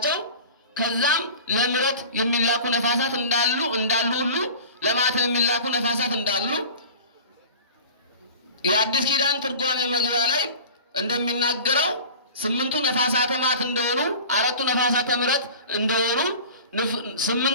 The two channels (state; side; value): inverted; both; correlation -0.39